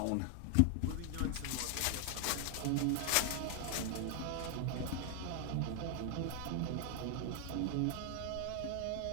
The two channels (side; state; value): both; different; correlation 0.00